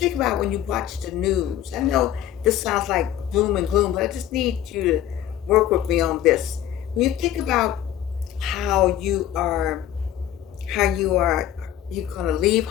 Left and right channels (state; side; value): quieter; right; 11.5 dB